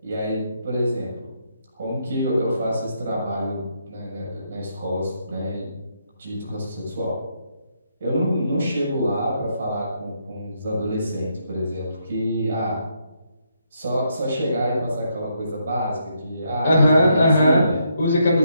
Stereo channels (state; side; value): inverted; both; correlation -0.77